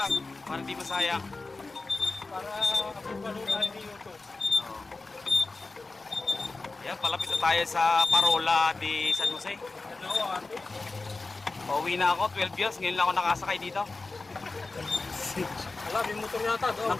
Para hindi masayang. para panood tayo ni YouTube. Ayan, palapit na tayo sa Parola de San Jose. Ano, ate? Pauwi na ako, 12 years. Ngayon lang ako nakasakay dito. Wala, may motor yata doon.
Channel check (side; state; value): right; quieter; 3.6 dB